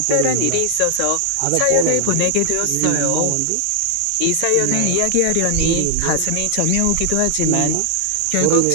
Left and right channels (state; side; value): different; both; correlation -0.01